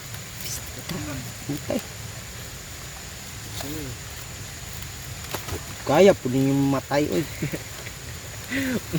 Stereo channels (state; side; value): identical; both; correlation 1.00